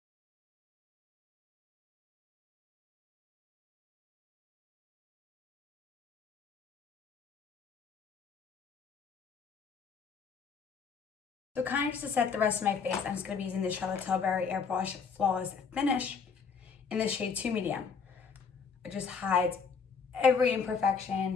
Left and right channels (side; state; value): right; quieter; 5.7 dB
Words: So kind of just to set the rest of my face, I'm just going to be using the Charlotte Tilbury Airbrush Flawless Finish in the shade 2 Medium. It just hides every